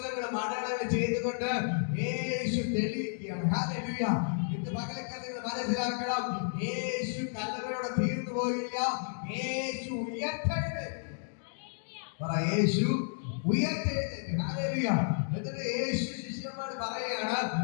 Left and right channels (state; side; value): silent; right; digital silence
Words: അടയാളങ്ങൾ ചെയ്തുകൊണ്ട് യേശു തെളിയിക്കുകയാണ്. ഹല്ലേലൂയ. ഇന്ന് പകലക്കാലം നിങ്ങൾ മനസ്സിലാക്കണം, യേശു കല്ലറയോടെ തീർന്നു പോയില്ല. യേശു ഉയർത്തെഴുന്നേറ്റു. യേശു ഉയർത്തെഴുന്നേറ്റു. ഹല്ലേലൂയ. എന്നിട്ട് യേശു ശിഷ്യന്മാർ പറയുകയാണ്,